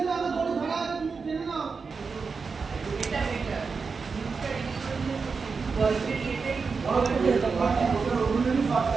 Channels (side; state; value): left; quieter; 5.0 dB